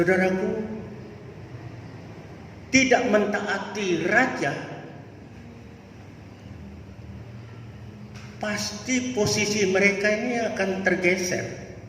tidak mentaati raja, pasti posisi mereka ini akan tergeser.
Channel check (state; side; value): identical; both; correlation 1.00